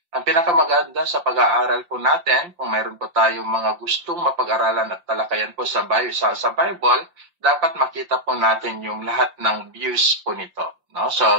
Ang pinakamaganda sa pag-aaral po natin, kung mayroon po tayong mga gustong mapag-aralan at talakayan po sa Bible, dapat makita po natin yung lahat ng views po nito. No? So,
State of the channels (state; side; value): late; left; 5.7 ms